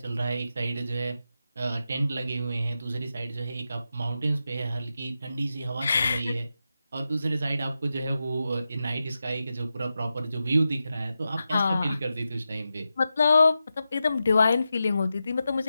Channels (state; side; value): inverted; both; correlation -0.90